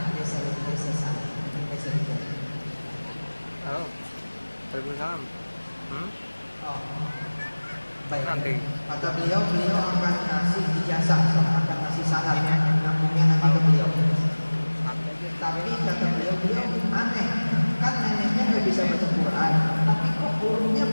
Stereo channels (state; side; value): inverted; both; correlation -1.00